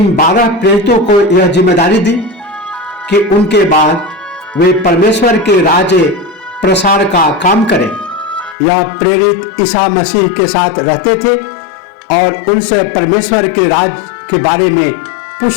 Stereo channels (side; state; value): right; drops out; at 8.6 s